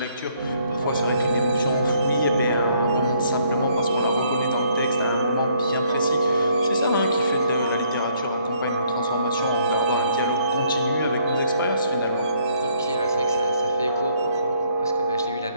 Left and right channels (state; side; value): inverted; both; correlation -0.67